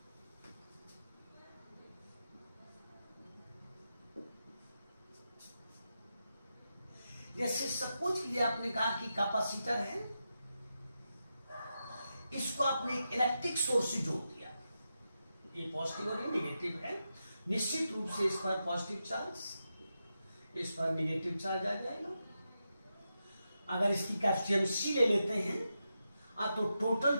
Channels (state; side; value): inverted; both; correlation -0.88